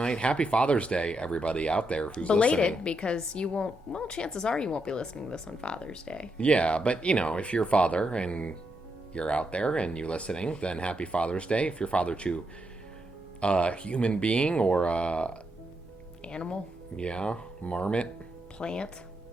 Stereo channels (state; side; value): normal; both; correlation 0.82